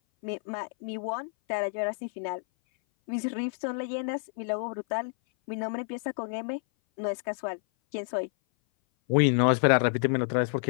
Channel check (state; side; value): silent; right; 57 dB below the other